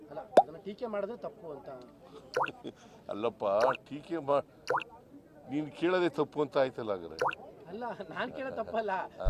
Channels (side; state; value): both; identical; correlation 1.00